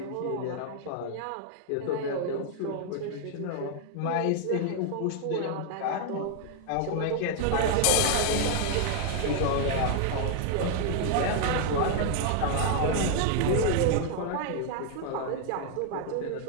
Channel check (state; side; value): different; both; correlation 0.00